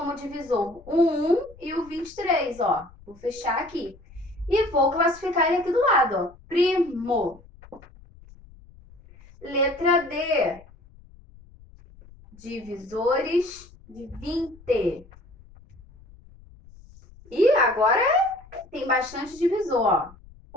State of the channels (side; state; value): left; noise; rumble, 23 dB below the sound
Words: divisor o 1 e o 23, ó. Vou fechar aqui. E vou classificar ele aqui do lado, ó. Primo. Letra D. Divisores de 20. E agora tem bastante divisor, ó.